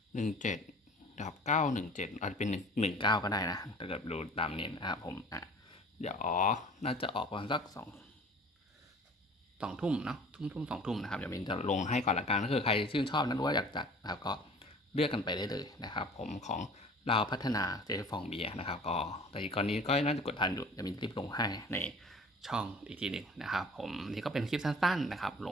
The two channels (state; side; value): normal; both; correlation 0.46